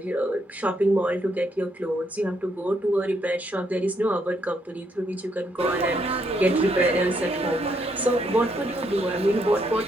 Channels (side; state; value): both; normal; correlation 0.74